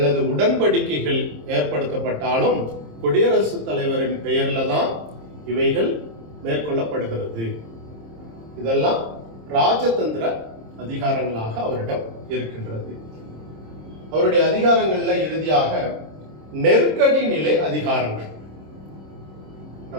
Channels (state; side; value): late; left; 26 ms